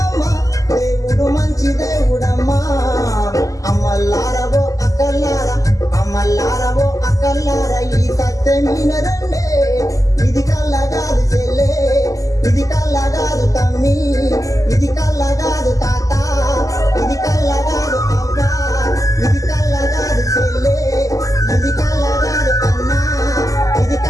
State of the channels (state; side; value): late; right; 0.16 ms